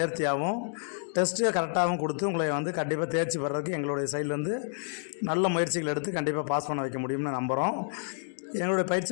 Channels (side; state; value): right; silent; digital silence